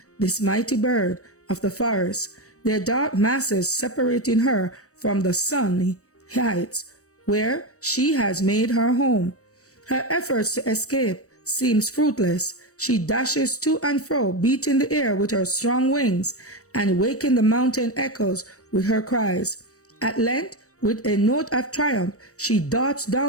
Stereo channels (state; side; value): late; right; 0.66 ms